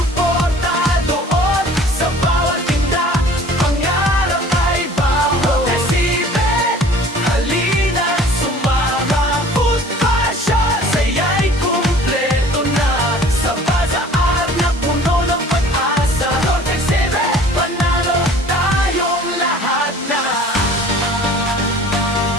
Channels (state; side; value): normal; both; correlation 0.48